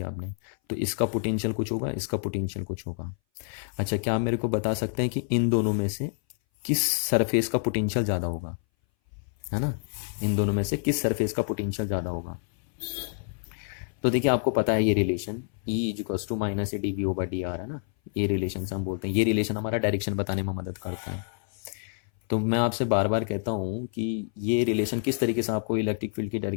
आपने, तो इसका पोटेंशियल कुछ होगा, इसका पोटेंशियल कुछ होगा। अच्छा, क्या आप मेरे को बता सकते हैं कि इन दोनों में से किस सरफेस का पोटेंशियल ज़्यादा होगा, है ना, इन दोनों में से किस सरफेस का पोटेंशियल ज़्यादा होगा? तो देखिए आपको पता है ये relation E equals to minus A D V over D R है ना, ये रिलेशन से हम बोलते हैं, ये रिलेशन हमारा डायरेक्शन बताने में मदद करता है। तो मैं आपसे बार बार कहता हूँ कि ये रिलेशन किस तरीके से आपको इलेक्ट्रिक फील्ड की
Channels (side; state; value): right; silent; 58 dB below the other